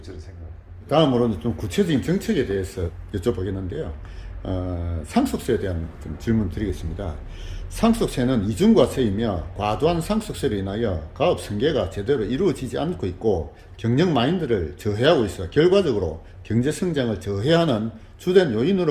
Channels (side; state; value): both; identical; correlation 1.00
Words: 저는 생각합니다. 다음으로는 좀 구체적인 정책에 대해서 여쭤보겠는데요. 상속세에 대한 좀 질문 드리겠습니다. 상속세는 이중과세이며 과도한 상속세로 인하여 가업 승계가 제대로 이루어지지 않고 있고 경영 마인드를 저해하고 있어 결과적으로 경제 성장을 저해하는 주된